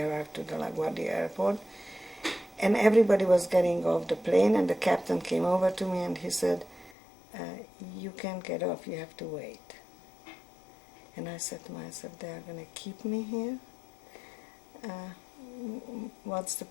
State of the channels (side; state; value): right; drops out; at 7.0 s